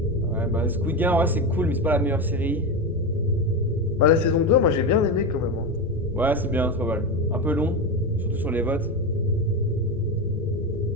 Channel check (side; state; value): both; normal; correlation 0.16